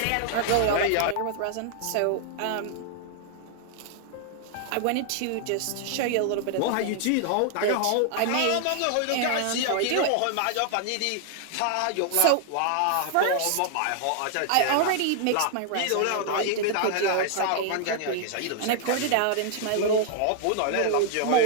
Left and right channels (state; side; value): different; both; correlation 0.00